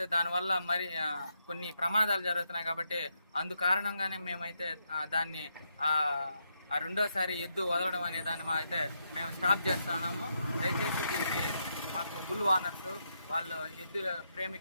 దానివల్ల మరి కొన్ని ప్రమాదాలు జరుగుతున్నాయి కాబట్టి అందు కారణంగానే మేమైతే దాన్ని రెండోసారి ఎద్దు వదలడం అనే దాన్ని అయితే మేము స్టాప్ చేస్తున్నాము. దయచేసి దీనికి మాకు బుల్ ఓనర్స్ వాళ్ళు ఎద్దు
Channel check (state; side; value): inverted; both; correlation -0.81